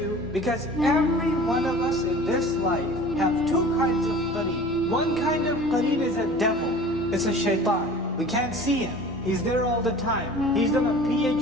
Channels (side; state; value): both; normal; correlation 0.42